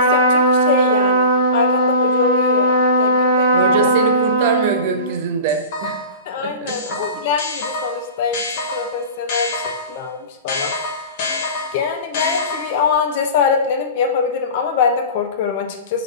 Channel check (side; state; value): both; inverted; correlation -0.34